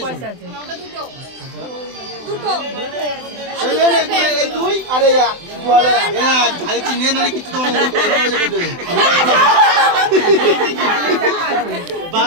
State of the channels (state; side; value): late; left; 24 ms